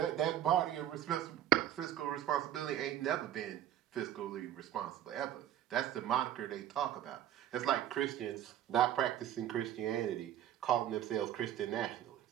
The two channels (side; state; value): left; quieter; 11.4 dB